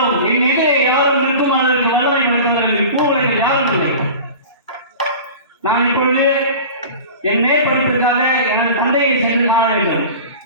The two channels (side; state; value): both; inverted; correlation -0.37